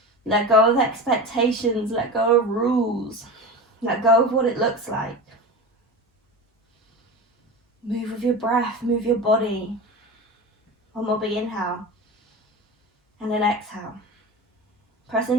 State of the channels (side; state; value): both; normal; correlation 0.28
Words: Let go of expectations, let go of rules, let go of what it looks like. Move with your breath, move your body. One more big inhale, and then exhale. Press